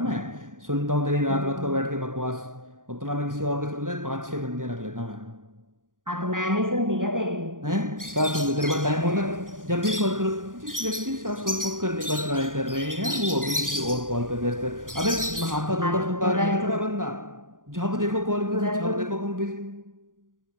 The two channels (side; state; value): left; late; 0.89 ms